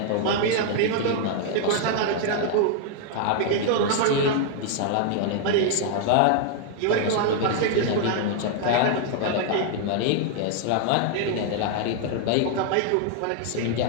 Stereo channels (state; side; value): different; both; correlation 0.00